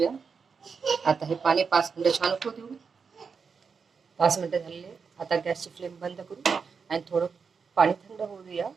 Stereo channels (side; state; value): left; quieter; 5.6 dB